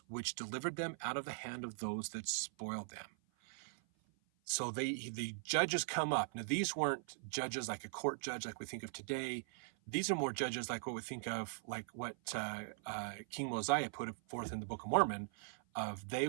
which delivered them out of the hand of those that spoiled them. So the judges come up. Now, these weren't judges like a court judge like we think of today. These are more judges like what we think of, like what King Mosiah put forth in the Book of Mormon, of they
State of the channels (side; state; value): left; silent; 51 dB below the other